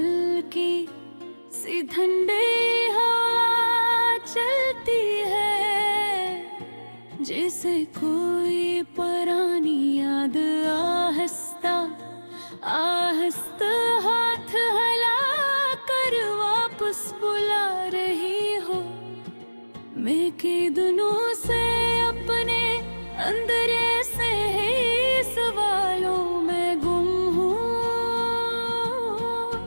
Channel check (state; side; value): inverted; both; correlation -1.00